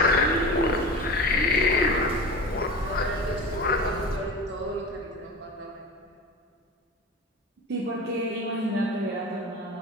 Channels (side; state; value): both; normal; correlation 0.31